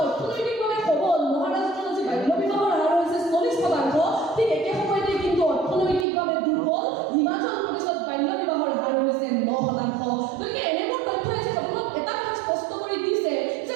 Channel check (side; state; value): left; drops out; at 6.1 s